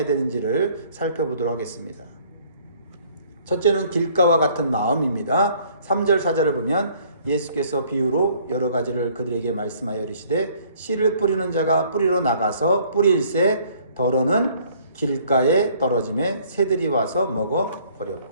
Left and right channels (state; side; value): inverted; both; correlation -0.59